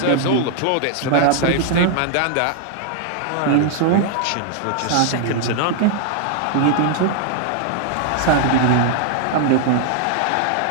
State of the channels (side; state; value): both; different; correlation 0.00